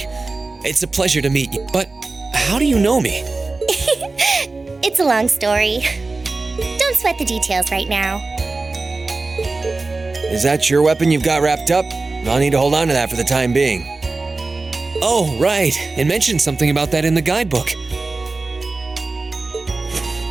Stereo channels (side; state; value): left; quieter; 3.6 dB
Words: It's a pleasure to meet you. But how do you know me? It's a long story. Don't sweat the details right now. Is that your weapon you've got wrapped up? I'll need to hold on to that for the time being. Oh, right. It mentioned something about that in the guidebook.